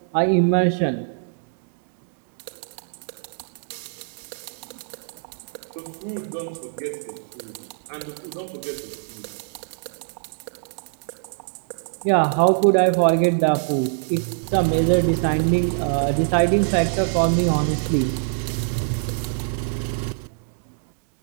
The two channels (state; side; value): silent; left; digital silence